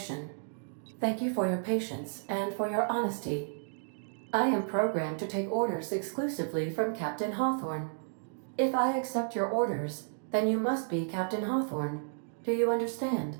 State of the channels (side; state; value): left; silent; digital silence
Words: Thank you for your patience and for your honesty. I am programmed to take orders exclusively from Captain Hawthorne. If I accept your orders, then you must be Captain Hawthorne. Do you understand?